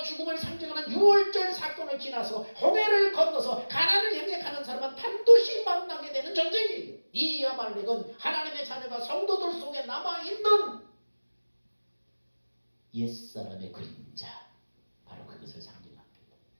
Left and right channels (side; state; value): both; inverted; correlation -1.00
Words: 죽음을 상징하는 유월절 사건을 지나서 홍해를 건너서 가나안을 향해 가는 사람은 반드시 만나게 되는 전쟁이에요. 이 아말렉은 하나님의 자녀가 성도들 속에 남아있는 옛사람의 그림자, 바로 그것을 상징합니다.